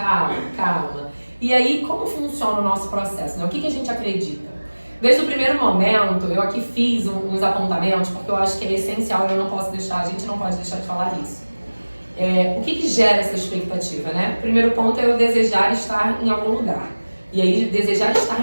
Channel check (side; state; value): both; inverted; correlation -1.00